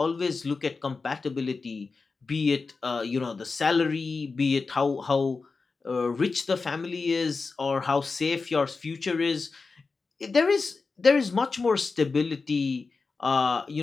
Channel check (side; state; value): right; quieter; 4.3 dB